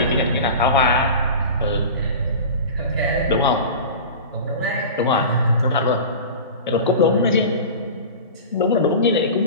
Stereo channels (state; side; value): inverted; both; correlation -0.33